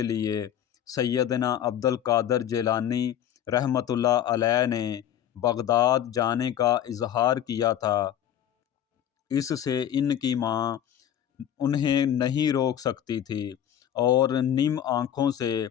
لیے سیدنا عبد القادر جیلانی رحمۃ اللہ علیہ نے بغداد جانے کا اظہار کیا تھا، اس سے ان کی ماں انہیں نہیں روک سکتی تھی اور نم آنکھوں سے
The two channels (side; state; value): right; quieter; 10.4 dB